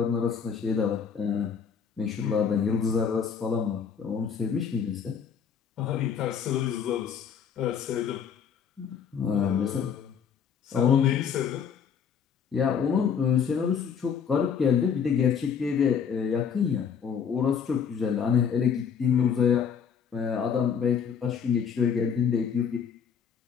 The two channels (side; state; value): right; quieter; 7.0 dB